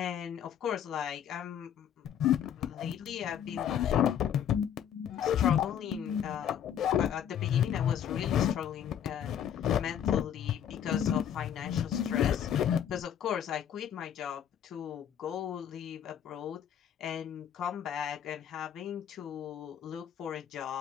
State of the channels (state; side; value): quieter; right; 9.3 dB